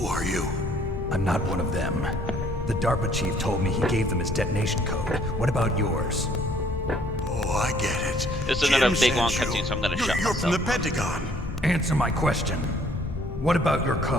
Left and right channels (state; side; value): noise; left; rumble, 8 dB below the sound